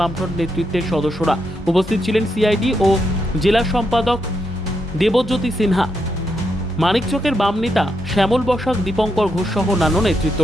নেতৃত্বের সদস্যরা। উপস্থিত ছিলেন সিআইডি ও জেলা সম্পাদক দেবজ্যোতি সিনহা, মানিকচকের বাম নেতা শ্যামল বসাক, দীপঙ্কর ঘোষ সহ অন্যান্য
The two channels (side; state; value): both; normal; correlation 0.81